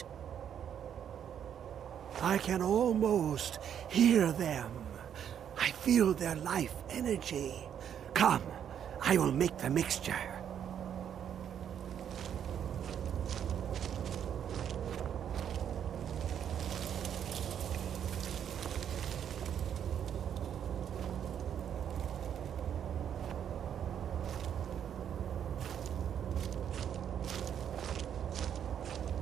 I can almost hear them. I feel their life energy. Come, I will make the mixture.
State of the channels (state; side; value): quieter; left; 9.0 dB